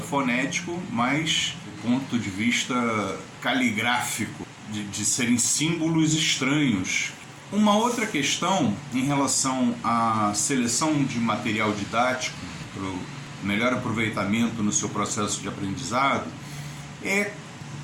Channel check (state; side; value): identical; both; correlation 1.00